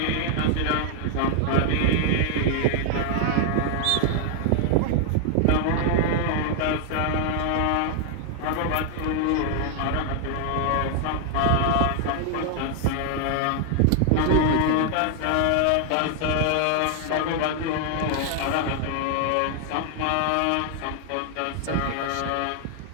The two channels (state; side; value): different; both; correlation 0.00